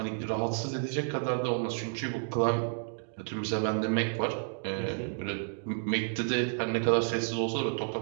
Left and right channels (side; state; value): left; silent; digital silence